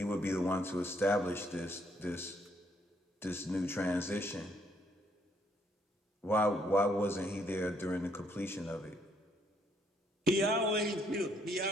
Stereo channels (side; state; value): both; normal; correlation 0.70